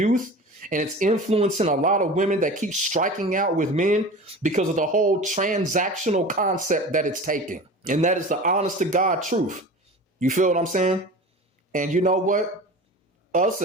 and it's influencing a lot of women that keep striking out with men because of the whole transactional concept that it's taking. And that is the honest to God truth. You feel what I'm saying? And you know what? Us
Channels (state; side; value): normal; both; correlation 0.35